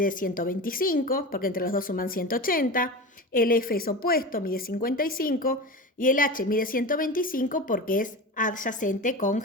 125, porque entre los dos suman 180. El F es opuesto, mide 55. Y el H mide 125 porque es adyacente con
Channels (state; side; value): normal; both; correlation 0.28